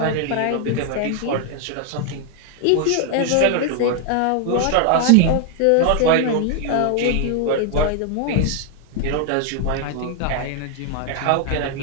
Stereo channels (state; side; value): different; both; correlation 0.00